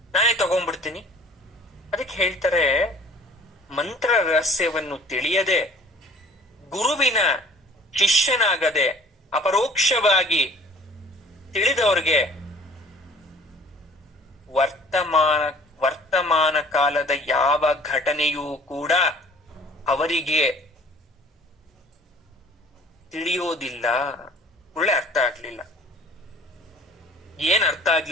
ನಾನೇ ತಗೊಂಡ್ಬಿಡ್ತೀನಿ. ಅದಕ್ಕೆ ಹೇಳ್ತಾರೆ, ಮಂತ್ರ ರಹಸ್ಯವನ್ನು ತಿಳಿಯದೆ ಗುರುವಿನ ಶಿಷ್ಯನಾಗದೆ ಅಪರೋಕ್ಷವಾಗಿ ತಿಳಿದವ್ರಿಗೆ ವರ್ತಮಾನ ಕಾಲದ ಯಾವ ಘಟನೆಯೂ ಕೂಡ ಅವರಿಗೆ ತಿಳಿಯೋದಿಲ್ಲ. ಒಳ್ಳೆ ಅರ್ಥ ಆಗ್ಲಿಲ್ಲ. ಏನ್ ಅರ್ಥ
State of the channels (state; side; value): normal; both; correlation 0.50